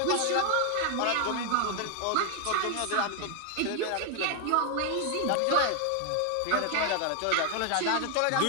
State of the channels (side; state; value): both; different; correlation 0.00